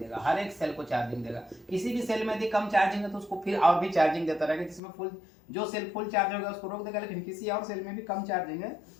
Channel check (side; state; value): right; drops out; at 4.8 s